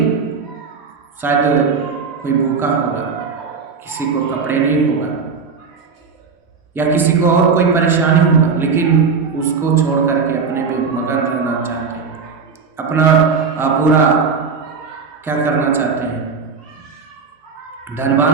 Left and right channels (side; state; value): left; quieter; 5.4 dB